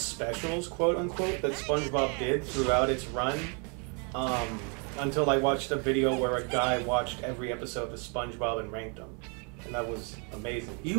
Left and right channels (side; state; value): left; quieter; 37.0 dB